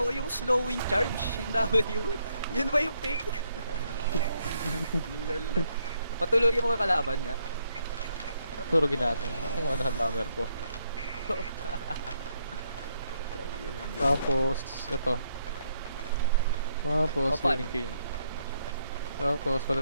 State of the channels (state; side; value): inverted; both; correlation -0.75